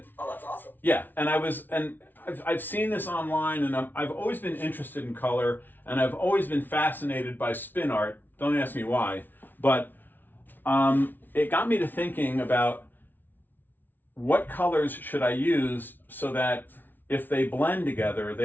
oh, that's awesome. Yeah, and I've seen this online, and I've always been interested in color, and I've always been fascinated by spin art. Don't ask me why, but it got me to thinking about what colors should I use so that if they blend together,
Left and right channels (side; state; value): right; late; 0.089 ms